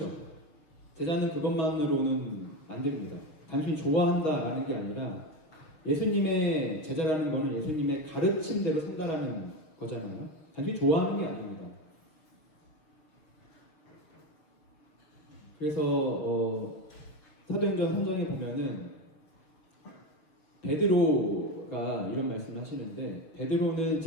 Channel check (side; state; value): right; late; 6.4 ms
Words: 제자는 그것만으로는 안 됩니다. 단순히 좋아한다라는 게 아니라 예수님의 제자라는 거는 예수님의 가르침대로 산다라는 거잖아요. 단순히 좋아하는 게 아닙니다. 그래서 사도행전 3장에 보면은 베드로가 이런 말씀을 하시는데 베드로는